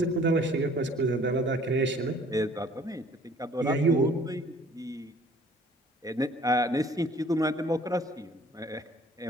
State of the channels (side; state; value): both; normal; correlation 0.54